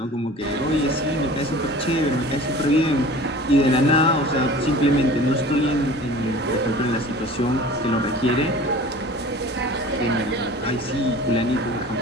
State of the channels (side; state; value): both; normal; correlation 0.42